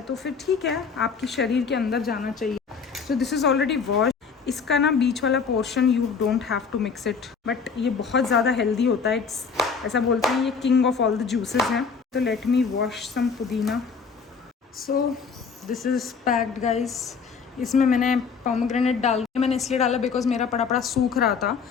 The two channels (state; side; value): quieter; right; 5.6 dB